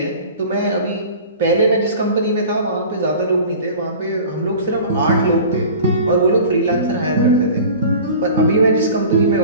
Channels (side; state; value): both; inverted; correlation -0.41